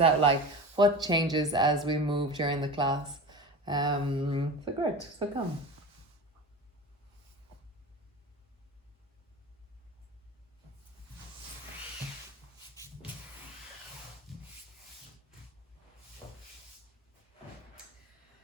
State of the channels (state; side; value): normal; both; correlation 0.30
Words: out like, what changes as we move during the class. So great. So come.